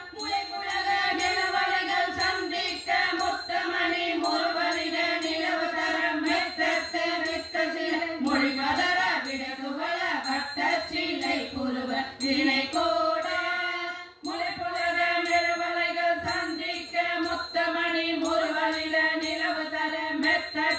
நிலவலைகள் சந்திக்க முத்தமணி முருவலிட நிலவு தரம் மெத்தத்து வித்த சில மொழி பதற விடகுவல வட்ட சிலை புருவ வினை கோட முளைப்புலக நிலவலைகள் சந்திக்க முத்தமணி முருவலிட நிலவு தர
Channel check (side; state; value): both; identical; correlation 1.00